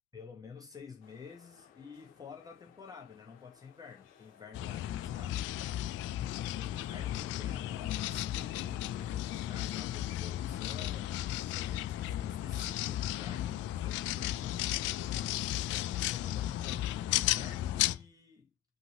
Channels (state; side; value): quieter; right; 13.0 dB